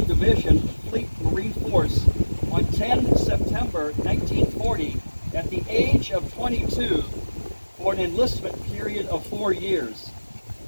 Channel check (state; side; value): inverted; both; correlation -1.00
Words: Division, Fleet Marine Force, on 10 September 1940 at the age of 22 for an enlistment period of 4 years.